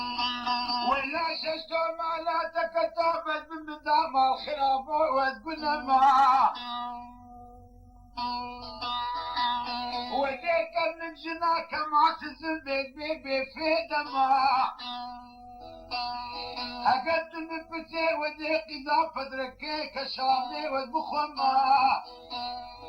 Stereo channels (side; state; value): both; identical; correlation 1.00